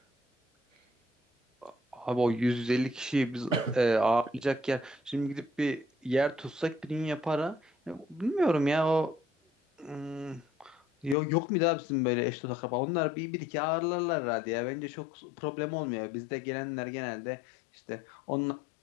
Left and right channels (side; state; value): right; drops out; at 11.2 s